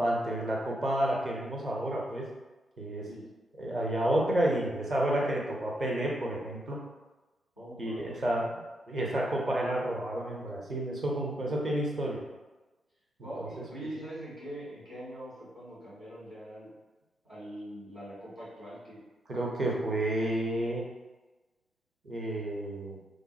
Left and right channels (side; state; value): both; normal; correlation 0.78